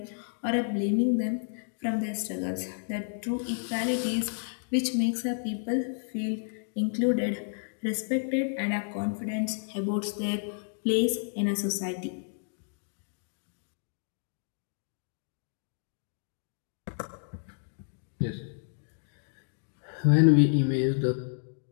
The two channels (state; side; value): silent; right; digital silence